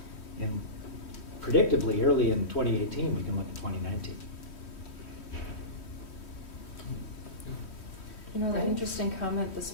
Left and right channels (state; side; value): late; right; 3.1 ms